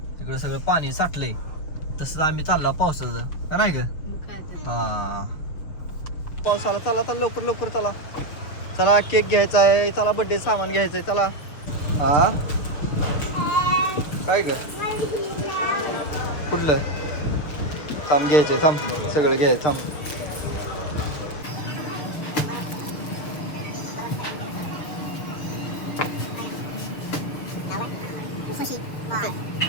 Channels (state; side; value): late; right; 6.7 ms